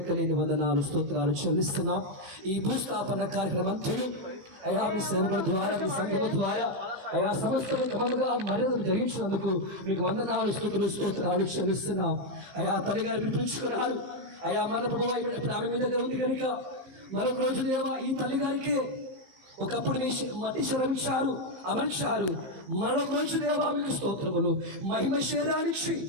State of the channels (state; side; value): late; left; 15 ms